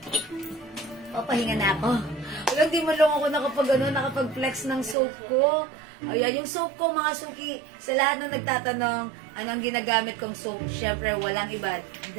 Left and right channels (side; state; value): left; drops out; at 5.0 s